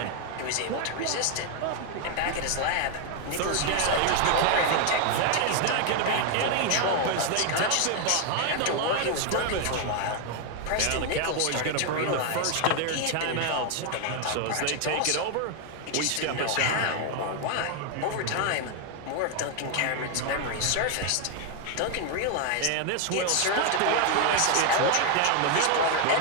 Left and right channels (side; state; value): both; different; correlation 0.01